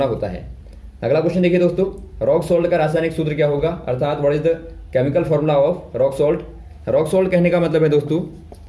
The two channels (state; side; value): identical; both; correlation 1.00